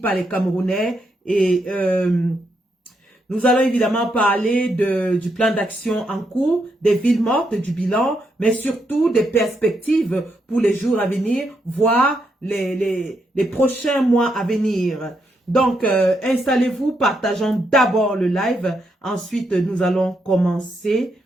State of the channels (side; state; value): both; normal; correlation 0.79